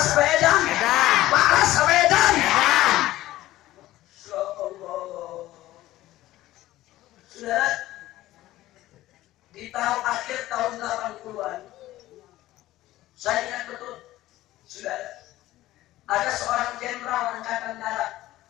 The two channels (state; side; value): quieter; right; 15.7 dB